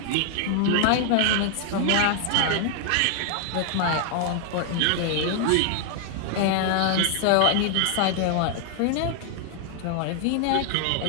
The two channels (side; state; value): both; different; correlation 0.00